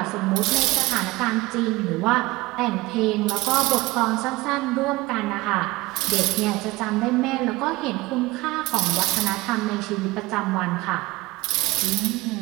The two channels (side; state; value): left; quieter; 20.8 dB